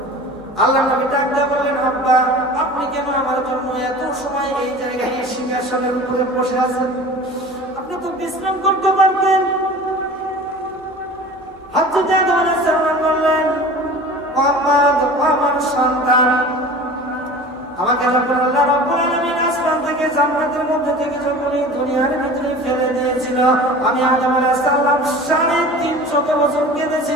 আল্লাহ নবী ডাক দিয়ে বললেন, আব্বা, আপনি কেন আমার জন্য এত সময় এই জায়গায় সিংহাসনের উপরে বসে আছেন? আপনি তো বিশ্রাম করতে পারতেন। হযরত আদম আলাইহিস সালাম বললেন, মুহাম্মদ, আমার সন্তান, আমাকে যখন আল্লাহ রাব্বুল আলামিন আসমান থেকে জান্নাতের মধ্যে থেকে যখন এই দুনিয়ার ভিতরে ফেলে দিয়েছিল, আমি আদম আলাইহিস সালাম 350 বছর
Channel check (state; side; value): normal; both; correlation 0.39